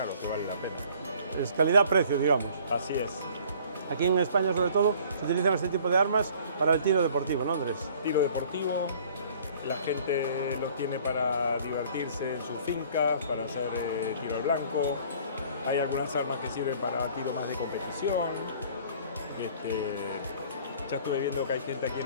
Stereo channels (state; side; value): inverted; both; correlation -0.53